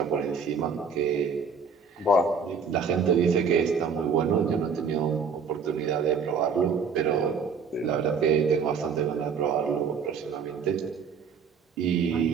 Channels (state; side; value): quieter; left; 5.7 dB